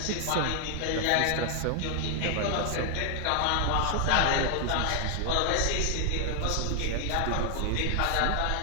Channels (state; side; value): different; both; correlation 0.00